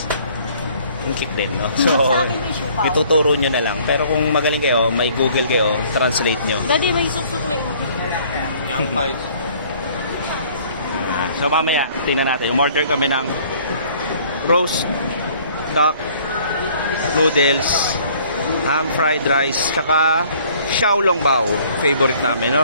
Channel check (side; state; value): both; inverted; correlation -0.56